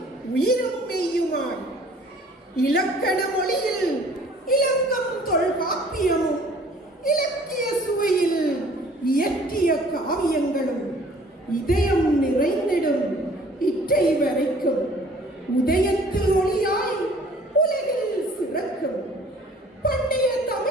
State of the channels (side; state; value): both; normal; correlation 0.53